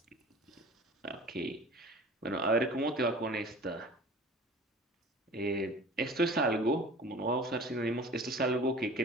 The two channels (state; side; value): normal; both; correlation 0.43